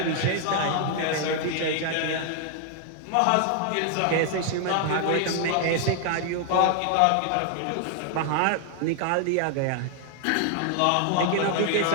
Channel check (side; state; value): both; different; correlation 0.00